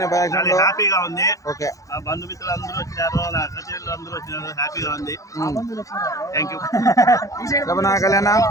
ఫంక్షన్లో హ్యాపీగా ఉంది. ఓకే నా బంధుమిత్రులు అందరూ వచ్చినారు, నా సచివులు అందరూ వచ్చినారు, హ్యాపీగా ఉంది. Thank you. చెప్పనా కళ్యాణ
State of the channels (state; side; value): late; right; 0.16 ms